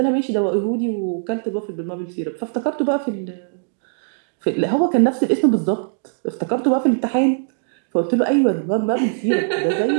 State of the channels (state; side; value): silent; left; digital silence